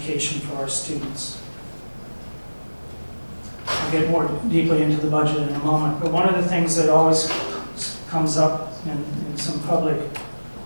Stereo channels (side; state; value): both; inverted; correlation -1.00